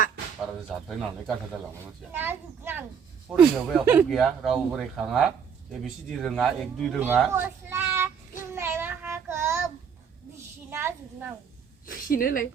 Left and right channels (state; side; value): quieter; left; 7.0 dB